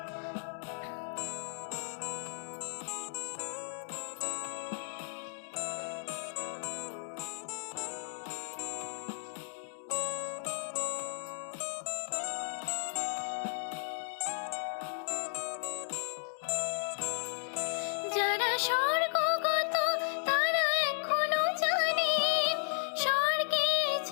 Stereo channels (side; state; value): right; silent; digital silence